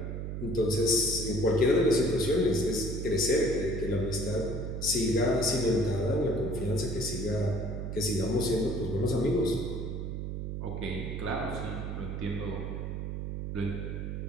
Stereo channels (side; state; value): right; noise; hum, 4 dB below the sound